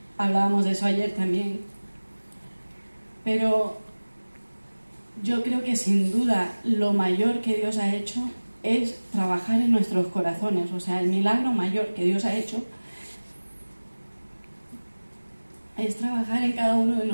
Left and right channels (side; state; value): both; inverted; correlation -1.00